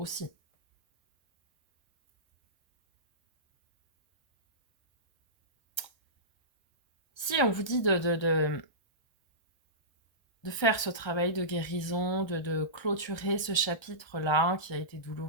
Si on vous dit de faire ce travail de guérison, de clôturer ce chapitre-là qui a été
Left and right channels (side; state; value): right; late; 1.3 ms